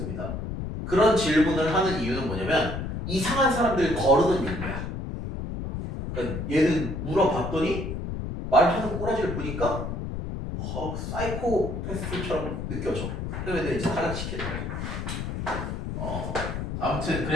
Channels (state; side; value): noise; left; rumble, 5 dB below the sound